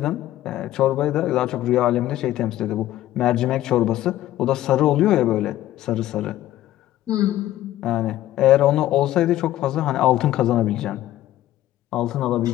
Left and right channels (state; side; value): quieter; right; 14.1 dB